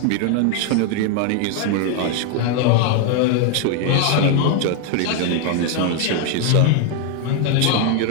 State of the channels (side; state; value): both; different; correlation 0.01